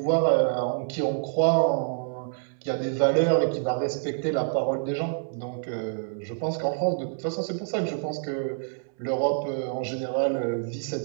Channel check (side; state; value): left; silent; 60 dB below the other